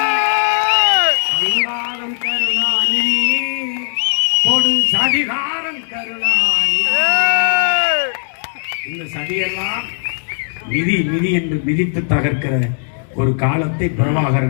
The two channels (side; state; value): right; silent; digital silence